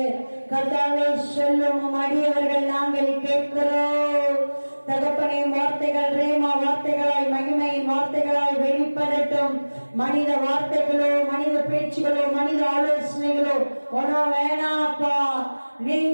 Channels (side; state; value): both; inverted; correlation -1.00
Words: கர்த்தாவே, சொல்லும் அடியவர்கள் நாங்கள் கேட்கிறோம். தகப்பனே, வார்த்தைகள் ரேமா வார்த்தைகளாய் மகிமையின் வார்த்தைகளாய் வெளிப்படட்டும். மனித வார்த்தைகளோ, மனித பேச்சுகளோ, மனித ஆலோசனைகளோ ஒன்றும் வேணாப்பா.